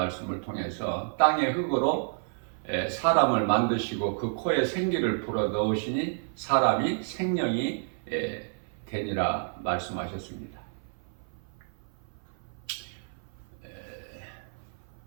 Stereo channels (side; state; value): left; silent; 55 dB below the other